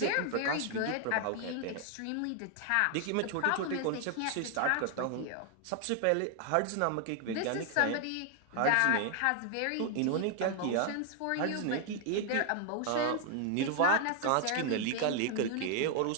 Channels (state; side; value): different; both; correlation 0.00